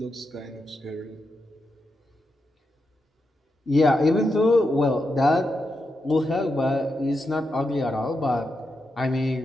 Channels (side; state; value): both; normal; correlation 0.86